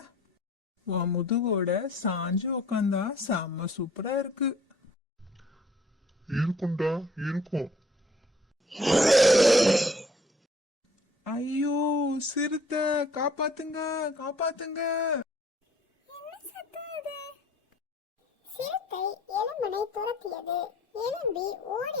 உன் முதுகோட சாஞ்சு உக்காந்தா செம்ம சூப்பரா இருக்கு. இருக்கும்டா, இருக்கும். ஐயோ, சிறுத்தை, காப்பாத்துங்க, காப்பாத்துங்க. என்ன சத்தம் இது? சிறுத்தை எலும்பனை துரத்தியது. எலும்பி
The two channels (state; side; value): normal; both; correlation 0.55